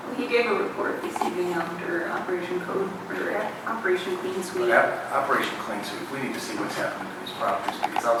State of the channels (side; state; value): both; identical; correlation 1.00